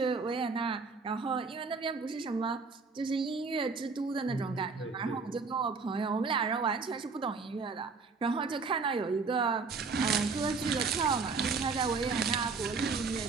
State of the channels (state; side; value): quieter; left; 4.6 dB